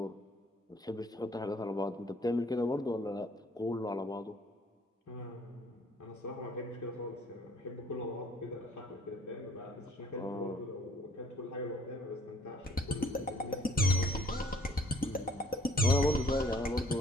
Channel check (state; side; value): normal; both; correlation 0.58